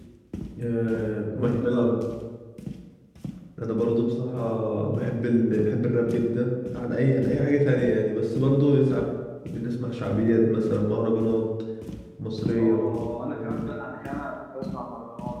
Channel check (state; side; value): identical; both; correlation 1.00